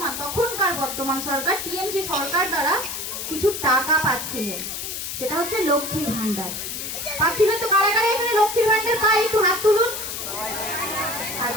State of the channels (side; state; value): left; noise; hiss, 5 dB below the sound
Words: তখনকার বর্তমান সরকার টিএমসি সরকার দ্বারা কিছু টাকা পাচ্ছিলেন, সেটা হচ্ছে লক্ষ্মীর ভান্ডার পাচ্ছিলেন। তো কারা কারা এখানে লক্ষ্মীর ভান্ডার পায় একটু হাত তুলুন।